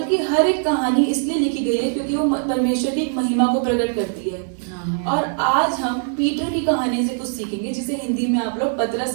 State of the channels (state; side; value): silent; left; digital silence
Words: की हर एक कहानी इसलिए लिखी गई है क्योंकि वो परमेश्वर की एक महिमा को प्रकट करती है। और आज हम पीटर की कहानी से कुछ सीखेंगे, जिसे हिंदी में आप लोग